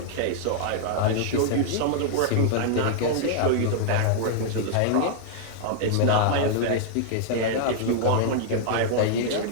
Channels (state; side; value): different; both; correlation -0.01